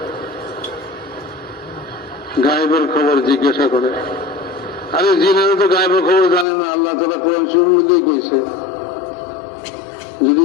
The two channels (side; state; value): right; drops out; at 6.5 s